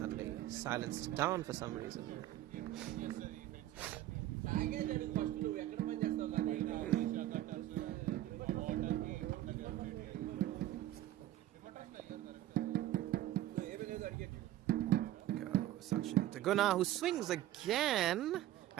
silenced down for some reason. Sachin to Gunnar, who swings again.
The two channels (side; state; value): left; quieter; 13.9 dB